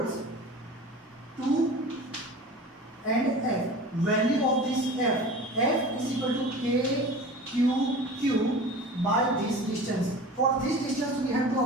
2 and F. Value of this F is equal to K Q Q by this distance. For this distance we have to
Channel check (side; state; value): both; normal; correlation 0.37